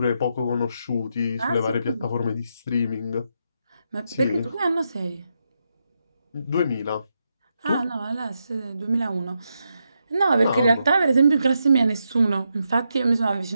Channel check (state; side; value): inverted; both; correlation -0.84